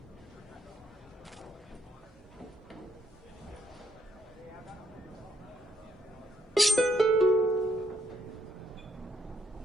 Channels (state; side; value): normal; both; correlation 0.73